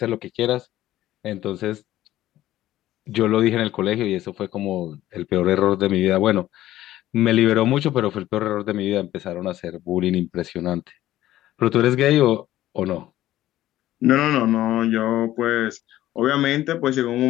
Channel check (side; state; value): right; quieter; 14.2 dB